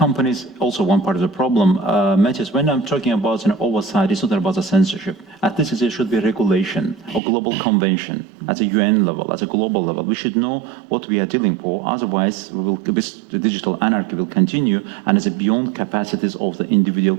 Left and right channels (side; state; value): left; drops out; at 7.2 s